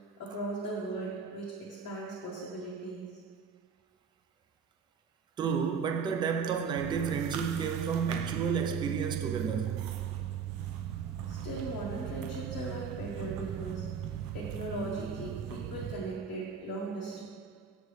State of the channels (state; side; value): quieter; left; 6.0 dB